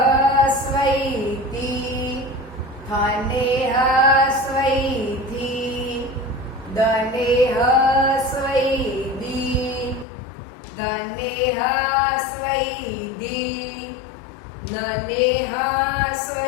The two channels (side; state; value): right; drops out; at 10.1 s